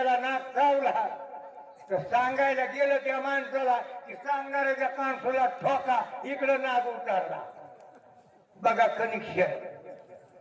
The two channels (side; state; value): both; identical; correlation 1.00